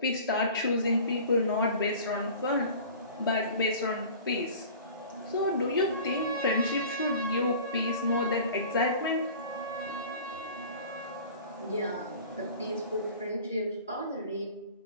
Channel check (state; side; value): inverted; both; correlation -0.42